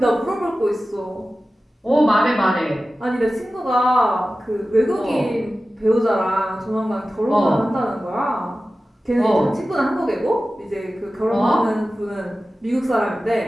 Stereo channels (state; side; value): normal; both; correlation 0.95